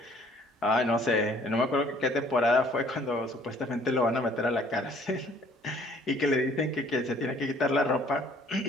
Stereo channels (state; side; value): normal; both; correlation 0.58